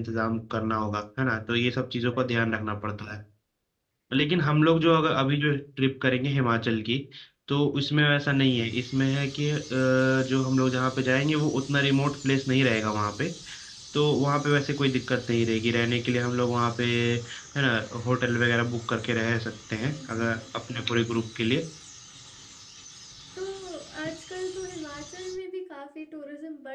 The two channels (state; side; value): identical; both; correlation 1.00